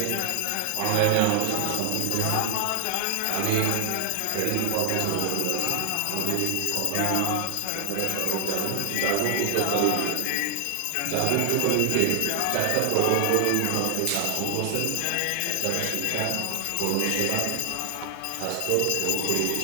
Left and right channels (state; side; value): different; both; correlation 0.00